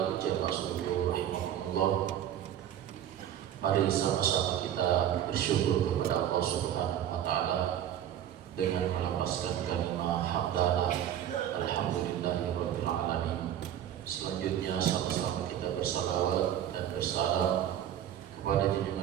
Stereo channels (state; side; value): quieter; left; 10.7 dB